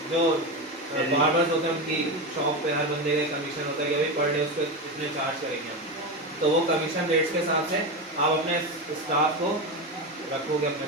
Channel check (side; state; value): both; normal; correlation 0.17